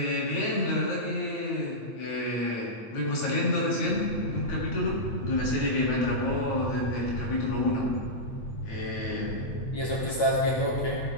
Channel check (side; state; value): right; late; 8.7 ms